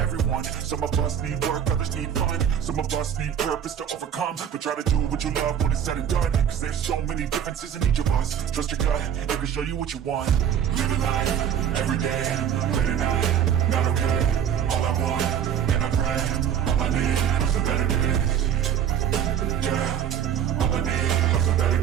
Some of us need work, others need fun. Some of us need purpose to overcome, but try to do what you love when it's said and done. Cause there's so many differences in each of us. Trust your gut, it can show you what you want. Living life, every day, late at night, not okay. All I want, and I pray, all I need are some better days. Yeah, all I need are some better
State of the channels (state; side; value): quieter; left; 9.0 dB